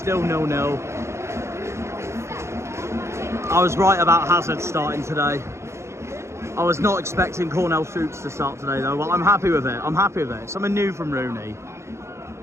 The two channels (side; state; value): left; late; 0.13 ms